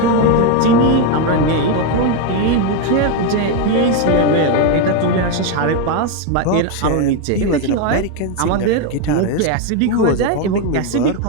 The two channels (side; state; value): both; different; correlation 0.02